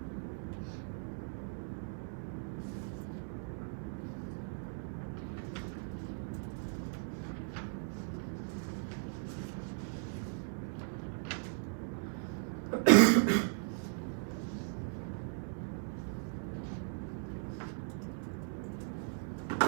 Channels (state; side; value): silent; left; 53 dB below the other